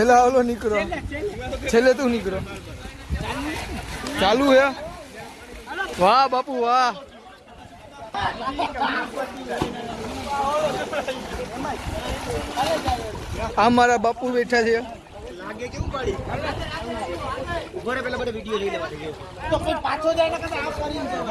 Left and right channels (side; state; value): both; identical; correlation 1.00